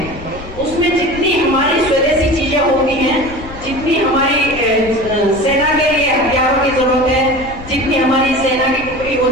उसमें जितनी हमारी स्वदेशी चीजें होती हैं, जितनी हमारी सेना के लिए हथियारों की जरूरत है, जितनी हमारी सेना की टुकड़ी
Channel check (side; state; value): left; noise; rumble, 15 dB below the sound